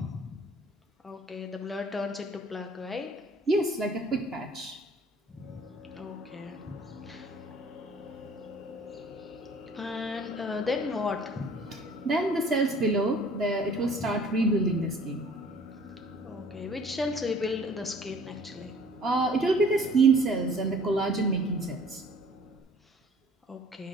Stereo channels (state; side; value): normal; both; correlation 0.52